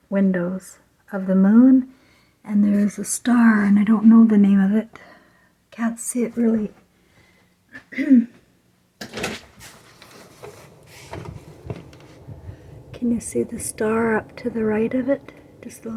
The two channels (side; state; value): both; identical; correlation 1.00